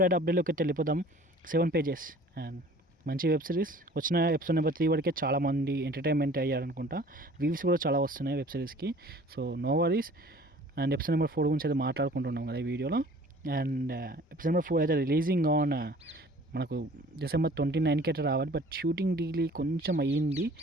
అప్డేట్లోకి అయితే వెళ్ళిపోదాం. 7 పేజెస్ అండ్ మంచి వెబ్ సిరీస్. వచ్చిన ఎపిసోడ్ నెంబర్ 3 వరకే చాలామంది ఎంటర్టైన్మెంట్ అయ్యారనుకుంటా. వ్యూస్ కూడా చాలా వస్తున్నాయి వెబ్ సిరీస్కి. So no worries. And episode number 4 గురించి అయితే మాట్లాడుకుంటున్నాం కదా ఈ వీడియోలో. అండ్ ఎపిసోడ్ నెంబర్ 4 అయితే రిలీజింగ్ ఆన్ మనకు December 29కి అయితే రావాలి. బట్ షూటింగ్ డీలీ కొంచెం అయ్యింది.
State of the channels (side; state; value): both; normal; correlation 0.49